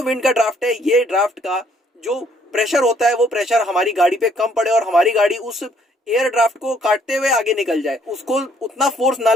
विंड का ड्राफ्ट है, ये ड्राफ्ट का जो प्रेशर होता है वो प्रेशर हमारी गाड़ी पे कम पड़े और हमारी गाड़ी उस एयर ड्राफ्ट को काटते हुए आगे निकल जाए, उसको उतना फोर्स ना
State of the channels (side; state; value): both; normal; correlation 0.65